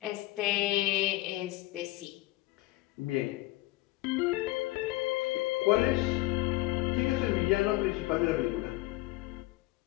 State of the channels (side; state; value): right; quieter; 19.1 dB